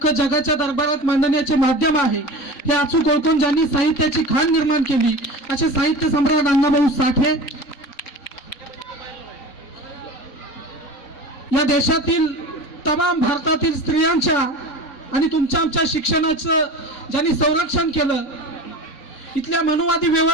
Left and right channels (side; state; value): right; late; 3.9 ms